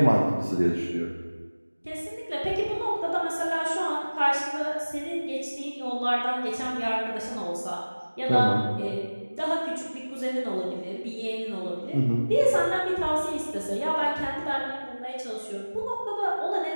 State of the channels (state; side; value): inverted; both; correlation -1.00